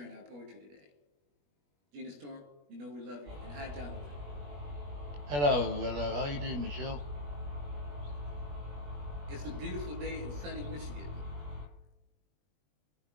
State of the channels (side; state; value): left; late; 21 ms